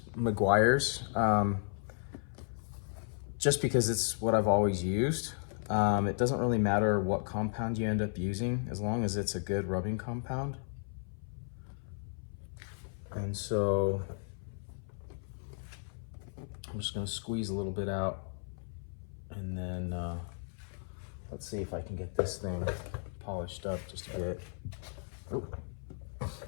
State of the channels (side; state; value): right; silent; 55 dB below the other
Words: Meguiar's just because it's what I've always used. It doesn't really matter what compound you end up using, as long as it's a good rubbing compound. And so I'm just gonna squeeze a little bit out, and then let's see if I can get this thing polished up just a bit. Oh.